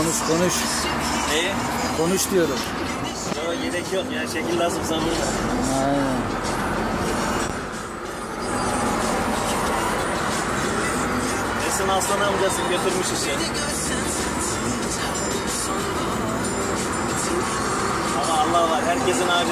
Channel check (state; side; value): identical; both; correlation 1.00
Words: Konuş. Neyi? Konuş diyorum. Yok gerek yok ya, şekil lazımsa burada. Aynen. Esin Aslan amcası götürmüş işi. Ama Allah var, herkesin